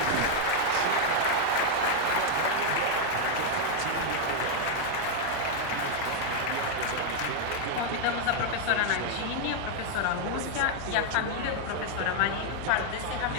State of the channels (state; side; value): different; both; correlation 0.00